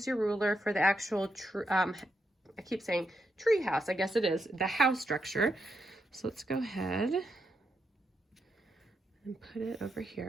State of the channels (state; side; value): normal; both; correlation 0.83